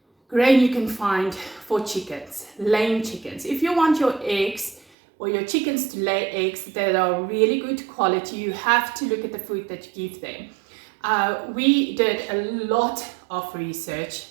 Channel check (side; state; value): left; drops out; at 4.9 s